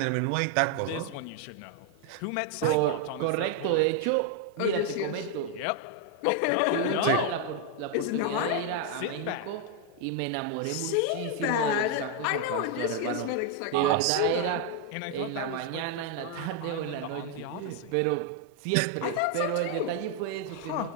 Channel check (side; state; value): both; different; correlation 0.01